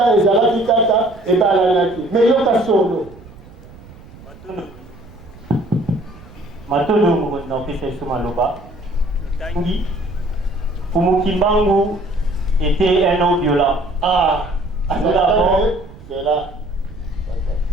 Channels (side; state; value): right; noise; rumble, 20 dB below the sound